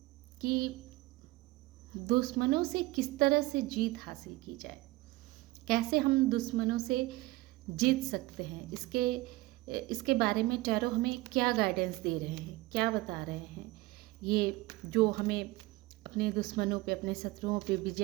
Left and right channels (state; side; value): quieter; left; 20.3 dB